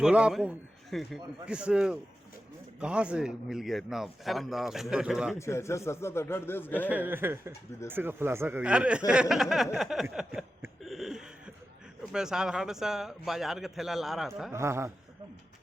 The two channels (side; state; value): both; normal; correlation 0.92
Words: आपको किस कहाँ से मिल गया इतना शानदार सुंदर झोला? अच्छा 7-8 देश गए विदेश का खुलासा करिए। मैं साधारण सा बाजार का थैला ला रहा था। हाँ हाँ,